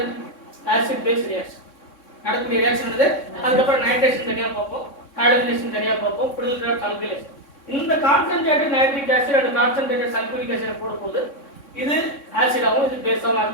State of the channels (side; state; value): right; late; 3.6 ms